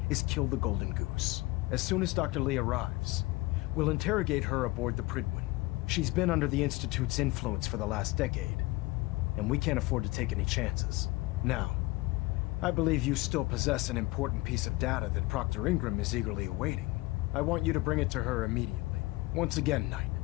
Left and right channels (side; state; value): right; quieter; 21.1 dB